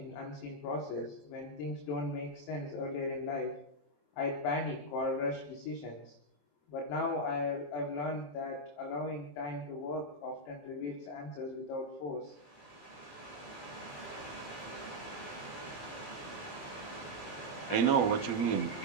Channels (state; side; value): late; right; 21 ms